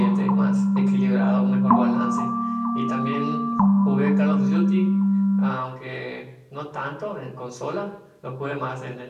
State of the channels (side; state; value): both; identical; correlation 1.00